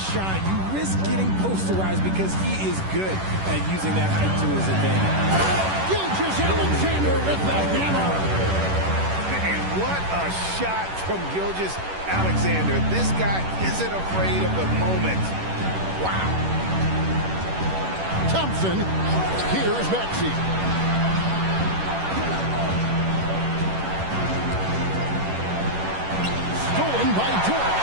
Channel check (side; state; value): left; late; 10 ms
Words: shot, you risk getting posterized because he is good at using that height to his advantage. Gilgeous-Alexander with the hammer. And what a shot from Gilgeous-Alexander. This guy isn't afraid of the moment. Wow. Thompson. Here's Maxey. Stolen by Dort.